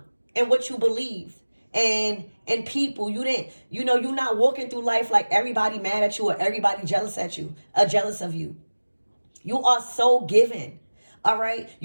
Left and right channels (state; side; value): inverted; both; correlation -1.00